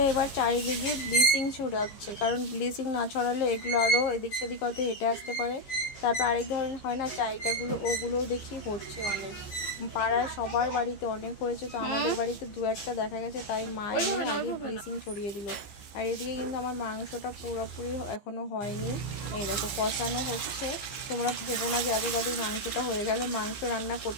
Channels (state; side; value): late; right; 15 ms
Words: এবার চারিদিকে ব্লিচিং ছড়াচ্ছে, কারণ ব্লিচিং না ছড়ালে এগুলো আরও এদিক সেদিক হয়তো হেঁটে আসতে পারে। তারপর আরেক ধরনের হয় না চাইটাগুলো, ওগুলোও দেখি হচ্ছে অনেক, পাড়ায় সবার বাড়িতে অনেক হয়েছে, তো আমাদের বাড়িতে 2-1টা দেখা গেছে, তাই মা এনে আগে ব্লিচিং ছড়িয়ে দিল। আর এদিকে কিন্তু আমার মাংসটা পুরোপুরি এখনও হয়নি, এই দেখো কষানো হচ্ছে। তোমরা ভেবো না যে এত তাদের মাংসটা হয়ে গেল, মাংস রান্না